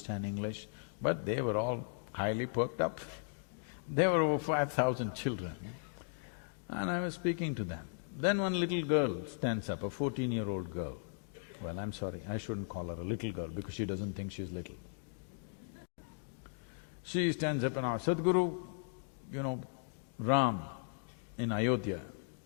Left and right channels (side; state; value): right; silent; digital silence